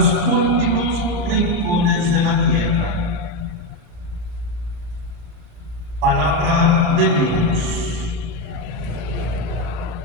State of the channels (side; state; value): left; late; 33 ms